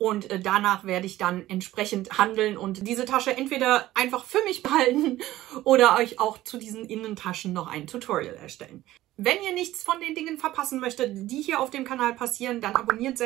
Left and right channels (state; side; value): quieter; left; 15.4 dB